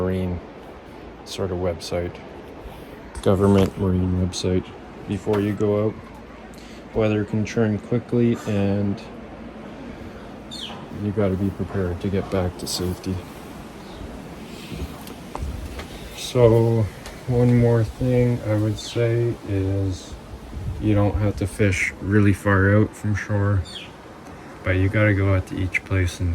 sort of website, government marine website, before you go out. Weather can turn quickly and you got to be prepared to get back to safety. So one more thing I would say is you don't have to fish really far out from shore, but you got to go out to each place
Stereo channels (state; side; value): identical; both; correlation 1.00